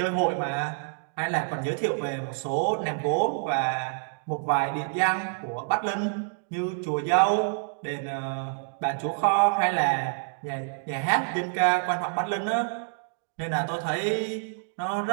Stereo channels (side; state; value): left; silent; digital silence